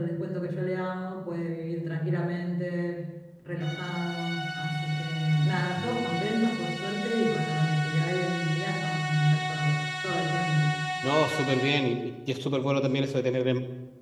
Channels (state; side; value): identical; both; correlation 1.00